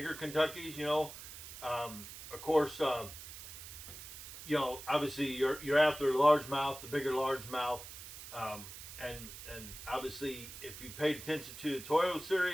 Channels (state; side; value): noise; right; hiss, 12 dB below the sound